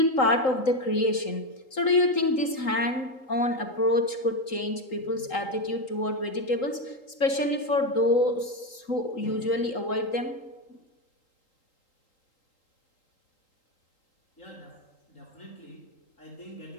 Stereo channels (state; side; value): late; right; 3.8 ms